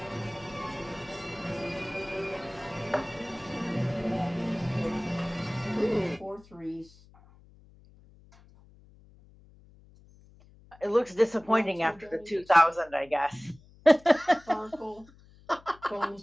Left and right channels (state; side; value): noise; left; hum, 25 dB below the sound